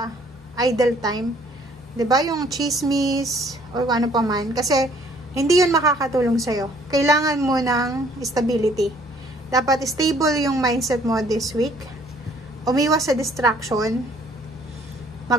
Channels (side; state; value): both; normal; correlation 0.60